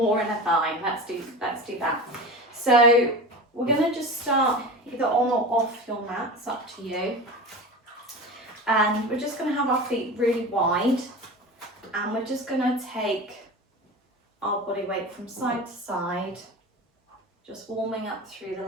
inner thigh, let's do that. So we're going to just start either on or off your mat, it's up to you. And we're just going to have our feet really wide and we're just going to take our body weight from side to side, just warming up through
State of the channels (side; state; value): both; normal; correlation 0.30